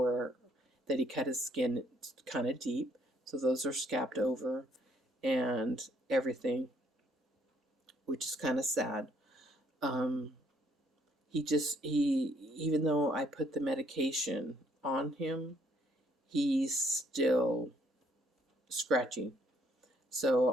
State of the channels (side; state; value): both; normal; correlation 0.66